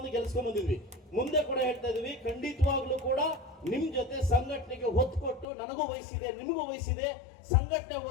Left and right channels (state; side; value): drops out; right; at 5.5 s